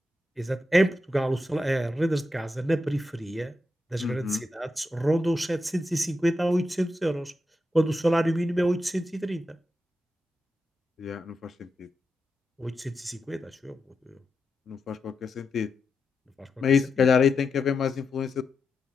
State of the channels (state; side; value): normal; both; correlation 0.87